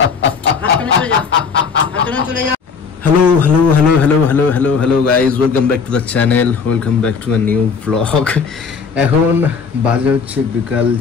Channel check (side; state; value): right; quieter; 5.7 dB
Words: Hello hello hello hello hello hello hello guys, welcome back to the channel, welcome back to a new blog. এখন বাজে হচ্ছে বিকাল